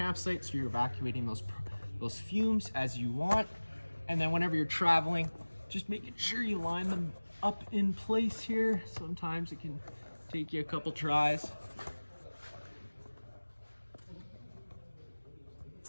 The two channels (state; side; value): inverted; both; correlation -1.00